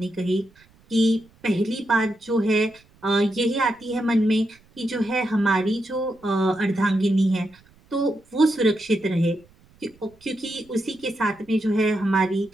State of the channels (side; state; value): right; noise; rumble, 30 dB below the sound